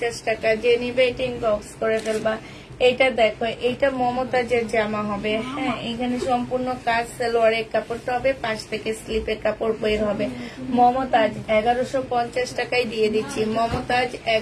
টাকা। যে নিবে এটা ইনবক্স করে ফেলবা। এটা দেখো, এটা মমতাজের জামা হবে, হ্যাঁ এখানে সম্পূর্ণ কাজ, সালোয়ারের কাপড়টা হবে, পাশ থেকে স্লিপের কাপড় বের হবে। মমতাজ 1150 টাকায় দিয়ে দিচ্ছি, মমতাজ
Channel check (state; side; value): identical; both; correlation 1.00